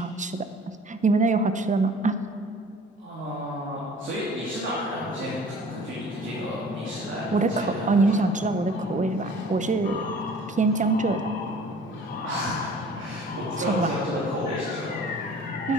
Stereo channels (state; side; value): normal; both; correlation 0.48